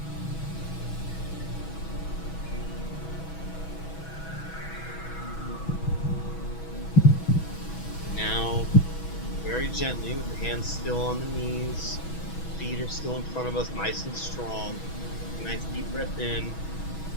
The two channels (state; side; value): late; right; 6.2 ms